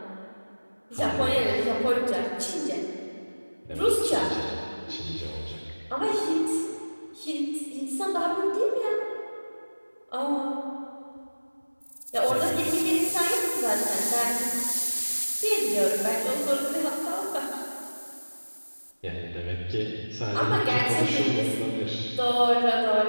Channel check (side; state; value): both; inverted; correlation -1.00